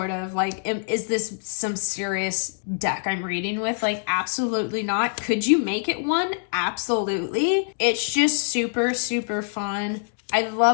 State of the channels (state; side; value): silent; right; digital silence